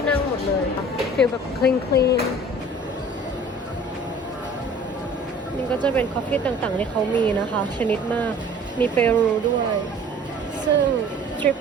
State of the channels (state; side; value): normal; both; correlation 0.48